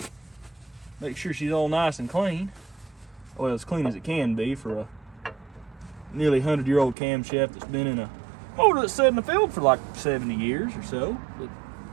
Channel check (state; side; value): drops out; left; at 7.0 s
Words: Make sure she's all nice and clean. Well, as clean as it can be for a nearly 100-year-old camshaft that's been in a motor that's sat in the field for like 70 years or so.